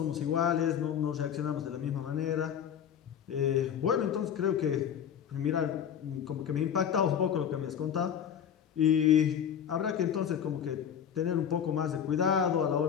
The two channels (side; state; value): right; quieter; 8.7 dB